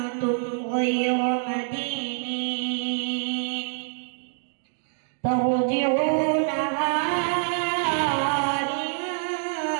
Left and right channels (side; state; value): left; silent; digital silence